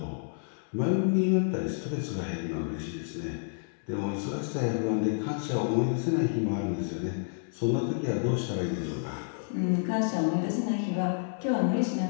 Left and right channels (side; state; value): right; silent; digital silence